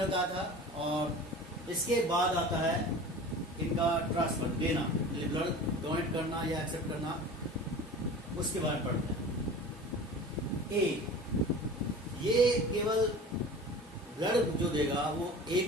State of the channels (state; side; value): normal; both; correlation 0.38